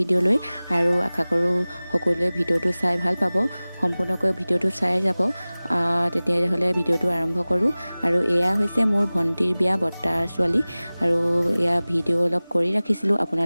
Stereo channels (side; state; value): both; inverted; correlation -0.99